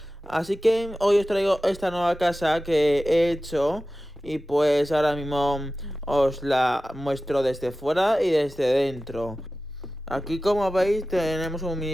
Así que hoy os traigo esta nueva casa que he hecho y pues ahora mismo os la muestro desde fuera y desde dentro. Aquí, como veis, tenemos un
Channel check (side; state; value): both; normal; correlation 0.95